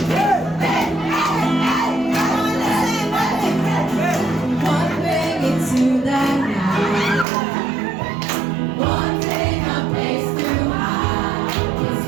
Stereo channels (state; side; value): drops out; left; at 7.2 s